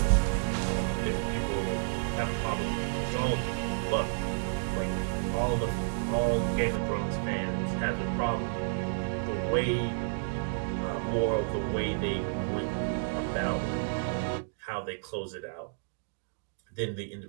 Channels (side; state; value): left; silent; digital silence